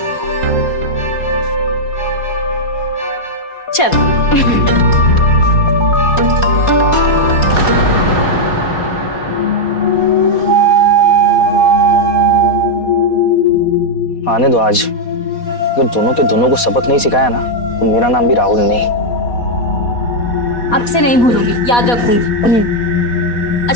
चल। आने दो आज। अगर दोनों के दोनों को सबक नहीं सिखाया ना तो मेरा नाम भी राहुल नहीं। अब से नहीं भूलूंगी, याद रखूंगी।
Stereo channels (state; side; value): late; right; 4.2 ms